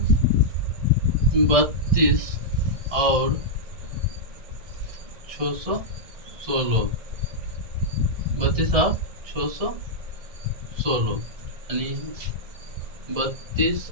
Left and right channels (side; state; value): left; late; 1.6 ms